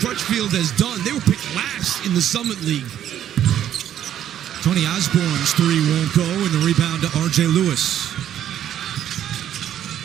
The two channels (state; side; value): quieter; left; 10.7 dB